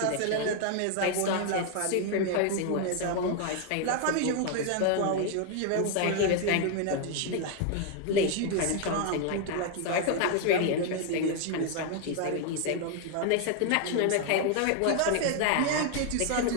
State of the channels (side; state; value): both; different; correlation 0.00